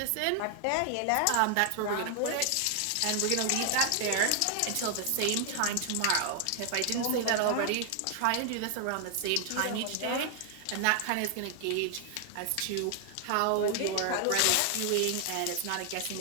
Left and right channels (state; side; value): different; both; correlation 0.00